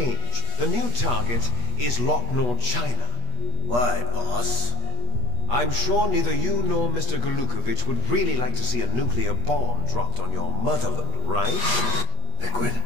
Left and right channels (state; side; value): late; left; 22 ms